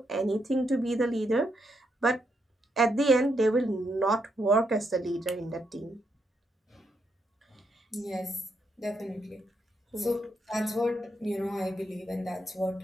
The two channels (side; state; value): both; normal; correlation 0.79